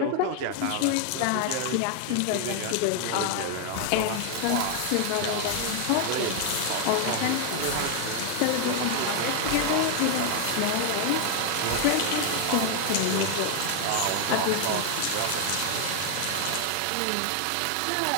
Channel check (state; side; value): different; both; correlation 0.00